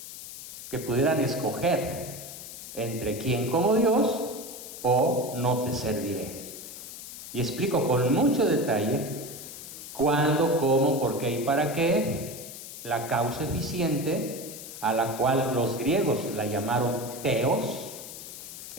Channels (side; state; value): left; noise; hiss, 12 dB below the sound